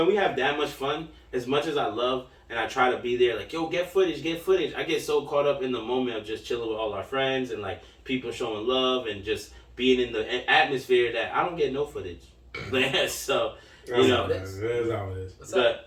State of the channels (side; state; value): both; identical; correlation 1.00